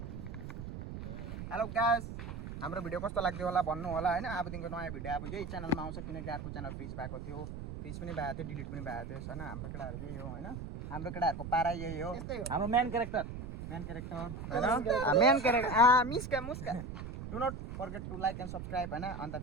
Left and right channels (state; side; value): noise; right; rumble, 8 dB below the sound